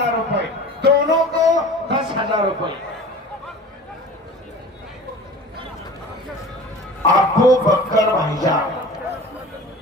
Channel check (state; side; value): normal; both; correlation 0.39